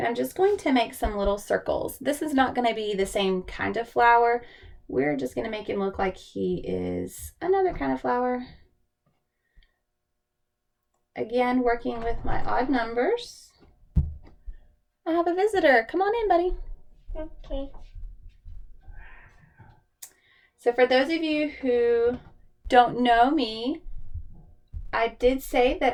I'm just going to make some little circles. This is not going to be the same kind of flower. We're just going to make him look like he is another kind of flower. Again, working with my odd numbers. I have a visitor. Come on in, buddy. Okay. So for those of you who don't know me, I did say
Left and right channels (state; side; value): identical; both; correlation 1.00